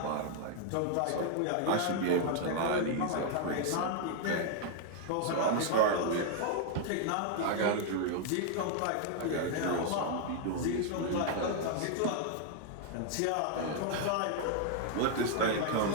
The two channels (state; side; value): different; both; correlation 0.00